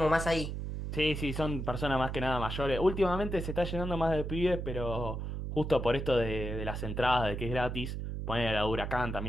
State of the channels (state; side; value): noise; right; hum, 4 dB below the sound